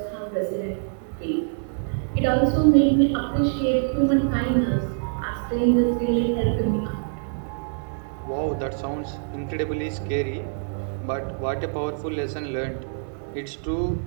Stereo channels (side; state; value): left; silent; 62 dB below the other